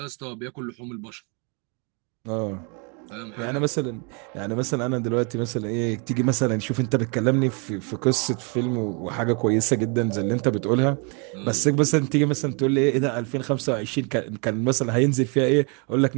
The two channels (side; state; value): left; quieter; 35.0 dB